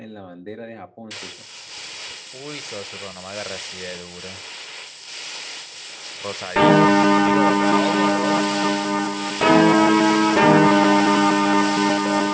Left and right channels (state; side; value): identical; both; correlation 1.00